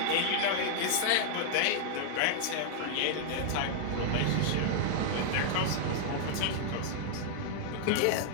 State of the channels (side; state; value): both; different; correlation -0.01